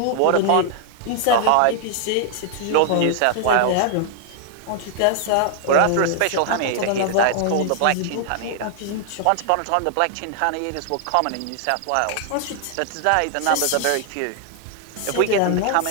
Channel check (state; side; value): different; both; correlation 0.00